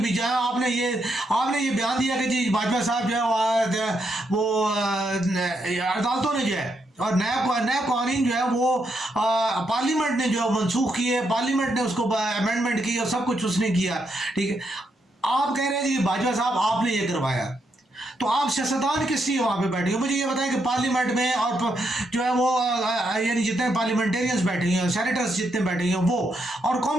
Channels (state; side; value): normal; both; correlation 0.80